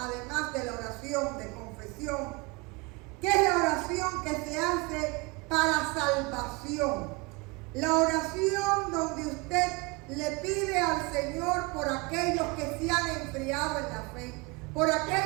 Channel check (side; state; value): left; quieter; 26.9 dB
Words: de la oración de confesión, que es la oración que se hace para salvación. La oración donde usted le pide al Señor por aquellos que se han enfriado en la fe, por